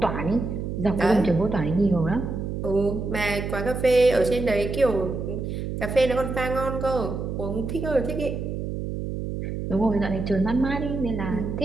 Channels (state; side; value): noise; right; hum, 4 dB below the sound